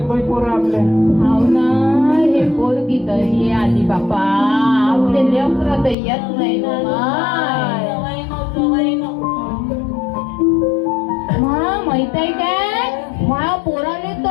बाई पोरं आपले. हाव ना हे पोरगी तर हे आली बापा आपले लेकरं तर येत नाही ना माहित आहे काय माझ्या पोराने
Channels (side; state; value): right; drops out; at 6.0 s